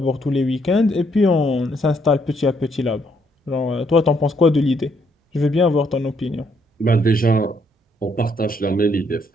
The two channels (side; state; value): both; normal; correlation 0.71